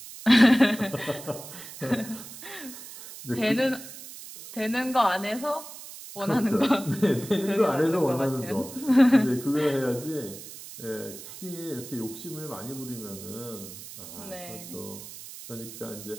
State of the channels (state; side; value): noise; right; hiss, 14 dB below the sound